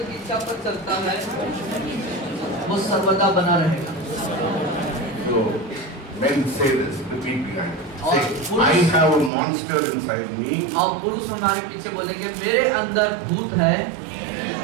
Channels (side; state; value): left; drops out; at 9.3 s